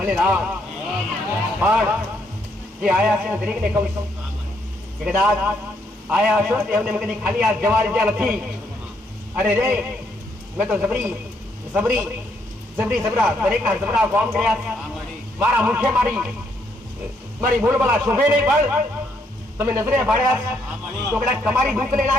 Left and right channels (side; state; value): both; normal; correlation 0.73